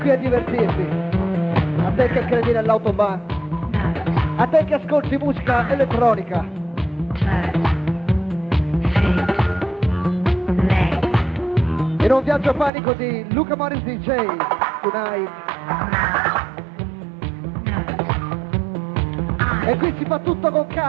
a divertirti, a te che credi nell'Autobahn, a te che ascolti musica elettronica. In un viaggio panico di Luca Morris DJ, tonight. E qui si fa tutto con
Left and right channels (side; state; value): left; drops out; at 12.7 s